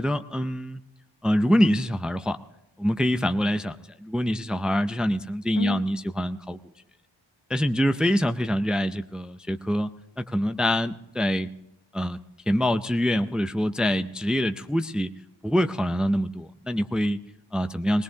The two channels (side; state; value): both; normal; correlation 0.94